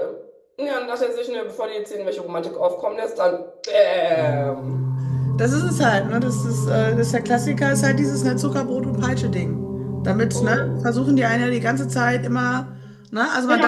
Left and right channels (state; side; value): identical; both; correlation 1.00